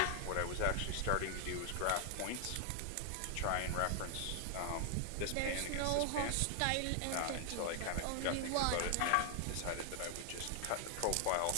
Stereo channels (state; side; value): different; both; correlation 0.00